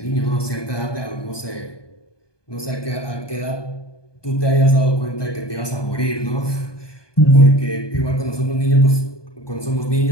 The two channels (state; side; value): late; right; 1.2 ms